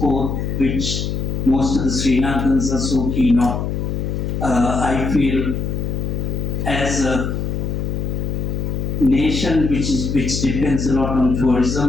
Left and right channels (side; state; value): left; noise; hum, 2 dB below the sound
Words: which most of the Sri Lankans are so keen on, I feel as a nation which depends a lot on